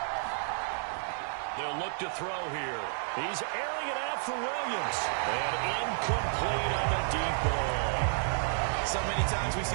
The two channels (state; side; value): silent; left; 57 dB below the other